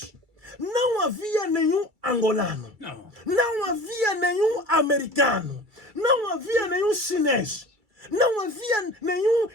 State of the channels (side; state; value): left; late; 2.3 ms